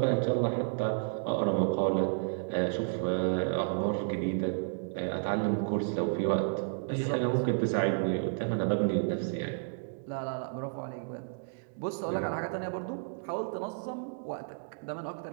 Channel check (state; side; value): silent; left; digital silence